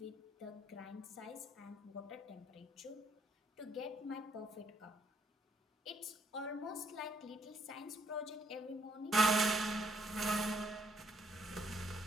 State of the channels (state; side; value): normal; both; correlation 0.70